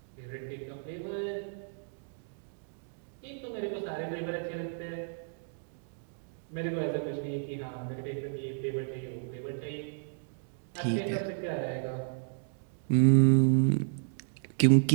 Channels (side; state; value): left; silent; digital silence